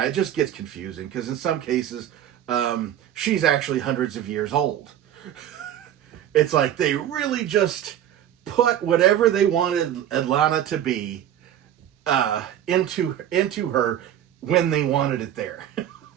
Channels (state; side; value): quieter; left; 10.9 dB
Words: it just gets confusing because in some cases, she's actually hundreds of years old. It's like they really just put whatever they wanted Atlanna to be into her when they wanted it there.